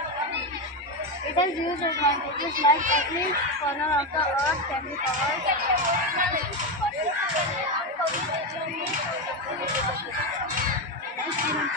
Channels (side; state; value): both; normal; correlation 0.11